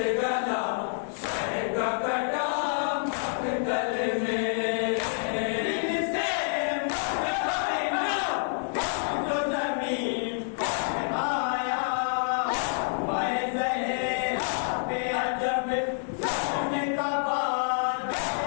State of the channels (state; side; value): silent; right; 59 dB below the other